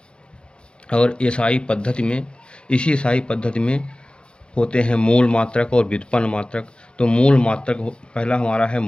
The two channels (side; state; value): right; late; 0.054 ms